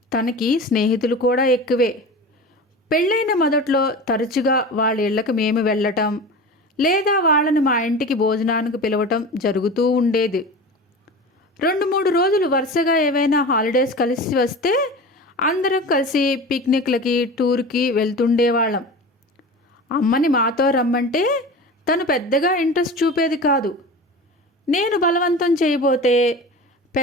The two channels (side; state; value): both; normal; correlation 0.32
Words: తనకి స్నేహితులు కూడా ఎక్కువే. పెళ్ళైన మొదట్లో తరచుగా వాళ్ళ ఇళ్లకు మేము వెళ్ళటం లేదా వాళ్ళని మా ఇంటికి భోజనానికి పిలవటం జరుగుతూ ఉండేది. 2-3 రోజులు వరుసగా ఏవైనా హాలిడేస్ కలిసి వస్తే అందరం కలిసి పిక్నిక్లకి టూర్కి వెళ్తుండేవాళ్ళం. అమ్మని మాతో రమ్మంటే తను పెద్దగా ఇంట్రెస్ట్ చూపేది కాదు. నేను బలవంతం చేయబోతే